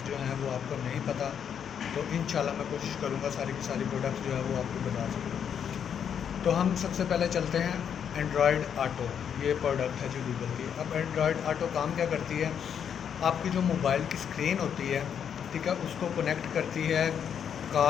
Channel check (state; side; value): quieter; right; 8.1 dB